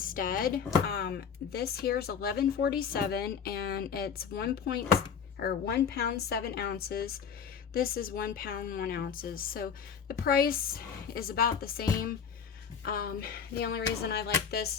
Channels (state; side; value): quieter; right; 7.0 dB